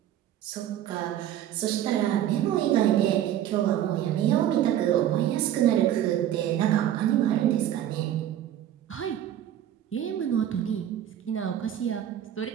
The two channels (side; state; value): left; quieter; 11.4 dB